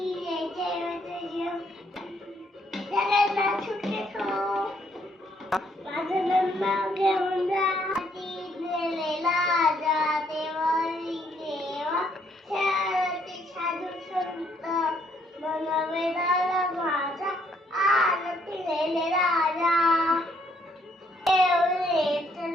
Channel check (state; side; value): normal; both; correlation 0.69